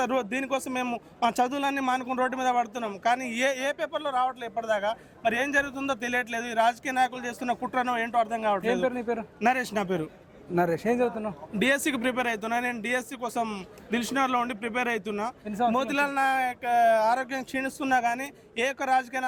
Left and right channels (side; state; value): both; identical; correlation 1.00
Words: దీనికోసం మేము మా చదువులన్నీ మానుకుని రోడ్డు మీద పడుతున్నాం కానీ ఏ పేపర్లో రావట్లేదు ఇప్పటిదాకా. మరి ఏం జరుగుతుందో తెలియట్లేదు. ఈ రాజకీయ నాయకులు చేస్తున్న కుట్రనో ఏంటో అర్థం కావట్లేదు. నరేష్ నా పేరు. నరేష్, ఏం చదువుతున్నావు? డిఎస్సికి ప్రిపేర్ అవుతున్నా. నేను డిఎస్సి కోసం దిల్షునగర్లో ఉండి ప్రిపేర్ అవుతున్నా. మోతిలాల్ నాయక్ ఆరోగ్యం క్షీణిస్తున్నా కానీ ఏ ఒక్క